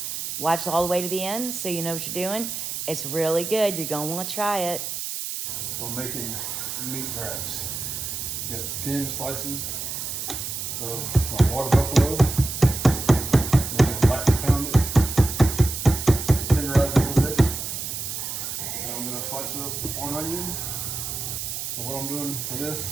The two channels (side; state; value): right; noise; hiss, 5 dB below the sound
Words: Watch all the way to the end so you know what you're doing. It's really good, you're going to want to try it. We're making meat wraps. You got thin slices of my water buffalo. We're going to lightly pound it, tenderize it a little bit. Then I'm going to slice up one onion. So what I'm doing for